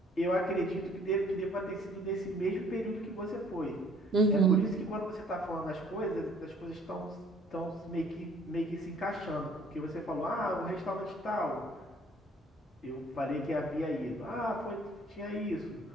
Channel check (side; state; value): both; normal; correlation 0.58